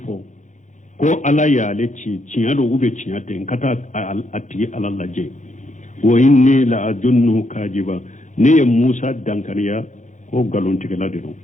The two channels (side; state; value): right; late; 0.36 ms